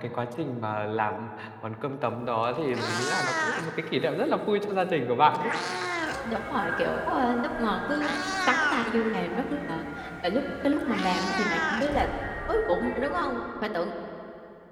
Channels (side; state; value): both; identical; correlation 1.00